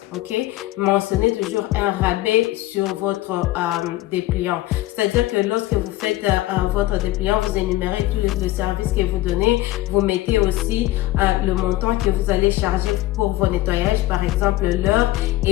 ok? Mentionnez toujours un rabais sur votre dépliant. C'est-à-dire que lorsque vous faites votre dépliant, vous énumérez tous les services que vous donnez. Vous mettez aussi le montant que vous allez charger pour vos nettoyages, par exemple l'heure.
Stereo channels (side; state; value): right; quieter; 16.7 dB